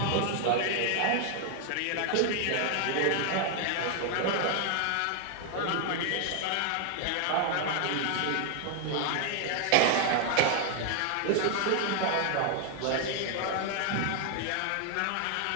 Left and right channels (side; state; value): both; different; correlation 0.00